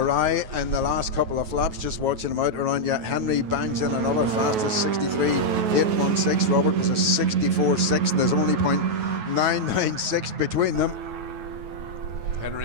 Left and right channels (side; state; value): left; late; 9.2 ms